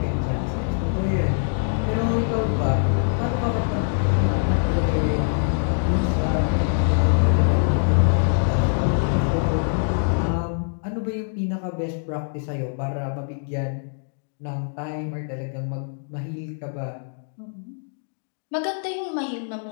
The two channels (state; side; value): silent; right; digital silence